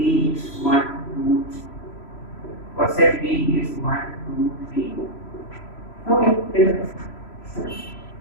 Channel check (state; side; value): late; right; 3.0 ms